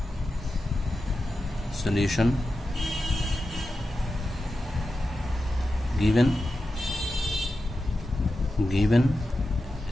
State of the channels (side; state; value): both; normal; correlation 0.91